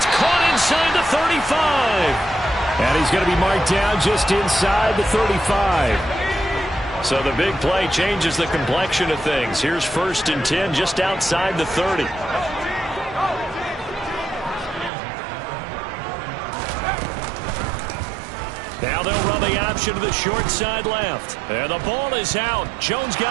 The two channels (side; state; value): left; drops out; at 14.9 s